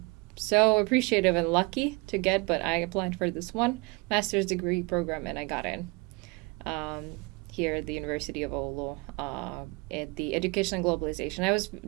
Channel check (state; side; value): quieter; left; 27.5 dB